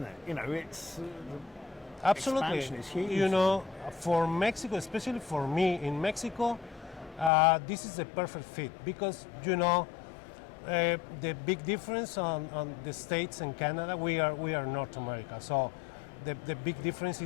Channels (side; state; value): right; drops out; at 7.3 s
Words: it? It's absolutely. Expansion is huge. For Mexico, especially for me in Mexico, this is a perfect fit because the big difference on the States and Canada, we are North America. So the big difference